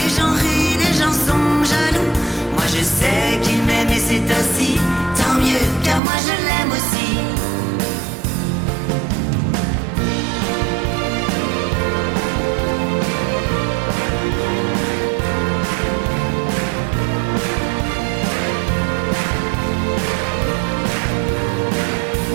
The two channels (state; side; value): drops out; left; at 6.0 s